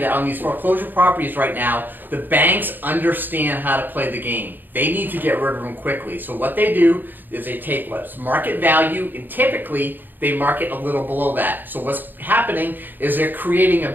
that on these foreclosure properties right now, the banks understand how to play the game. They need to get rid of them quickly. So what they do is they take what's market value, and typically they market a little below that. So what's happening is they're creating a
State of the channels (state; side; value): late; left; 0.091 ms